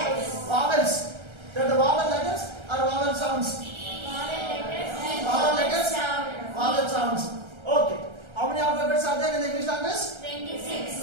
Vowels. They're the vowel letters or vowel sounds? Vowel letters, vowel sounds. Okay. How many alphabets are there in the English language?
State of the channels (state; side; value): late; left; 1.3 ms